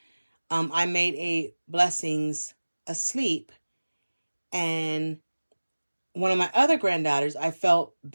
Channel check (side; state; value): both; inverted; correlation -1.00